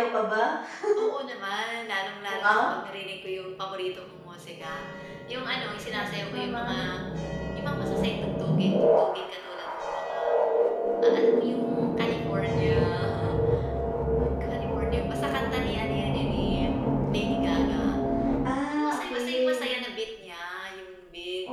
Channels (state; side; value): identical; both; correlation 1.00